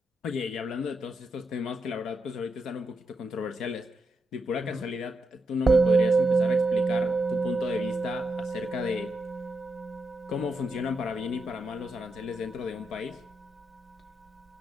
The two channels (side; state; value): both; normal; correlation 0.83